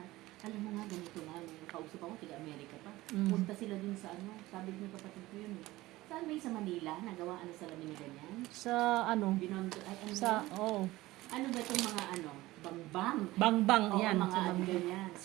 Alam mo nga, ganito nga, may kausap ako, taga-Amerika pa. Mm. Punta sila dun sa ano, sabi ng kapatid ko yun eh. Saan may sa Manila, nagawa ano sa lamin na ganyan? Sa ano? Binondo, ay ano Sa, yun? oh. Ano ba itong mga ano, bangbang? Bang-bang, Oo, yan. mga Sa ano Bang- ganyan.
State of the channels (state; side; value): quieter; left; 18.2 dB